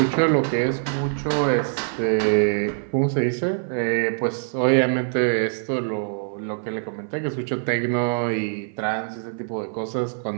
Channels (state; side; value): silent; left; 57 dB below the other